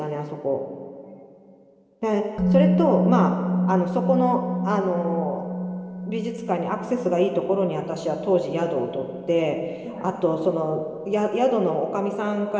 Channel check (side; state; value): both; identical; correlation 1.00